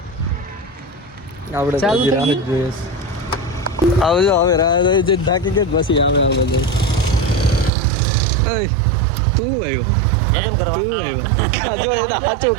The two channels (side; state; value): left; drops out; at 7.7 s